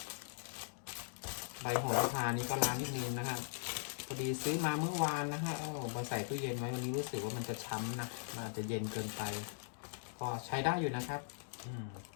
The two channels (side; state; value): right; silent; digital silence